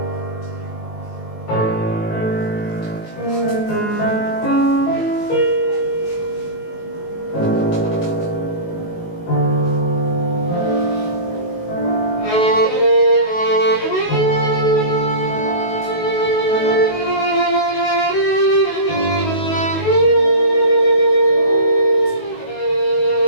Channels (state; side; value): late; right; 19 ms